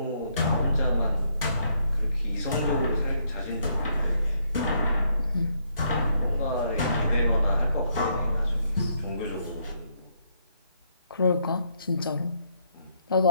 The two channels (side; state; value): both; inverted; correlation -0.73